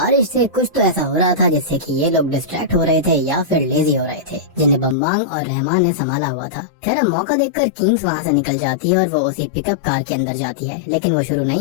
से कुछ तो ऐसा हो रहा था जिससे कि ये लोग डिस्ट्रैक्ट हो रहे थे या फिर लेजी हो रहे थे, जिन्हें बम्बांग और रहमान ने संभाला हुआ था। खैर अब मौका देखकर किंग्स वहाँ से निकल जाती है और वो उसी पिकअप कार के अंदर जाती है, लेकिन वो शुरू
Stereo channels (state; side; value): drops out; right; at 5.0 s